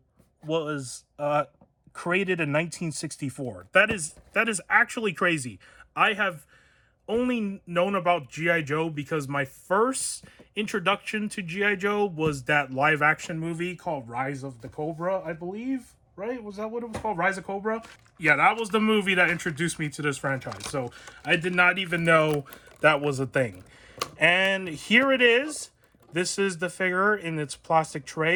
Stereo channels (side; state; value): both; identical; correlation 1.00